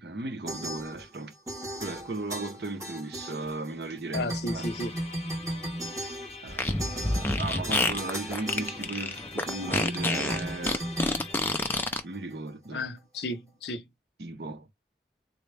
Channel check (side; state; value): both; normal; correlation 0.45